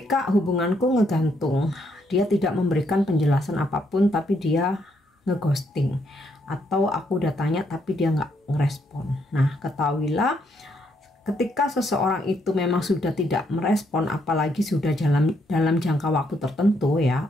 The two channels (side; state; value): both; normal; correlation 0.74